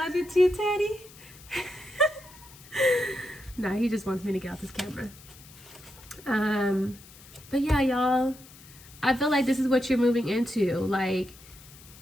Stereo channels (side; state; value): left; noise; hiss, 21 dB below the sound